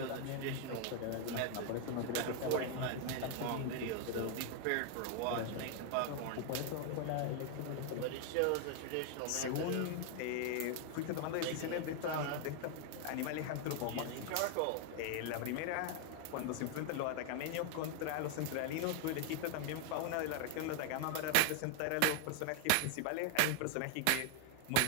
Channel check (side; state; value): both; different; correlation 0.00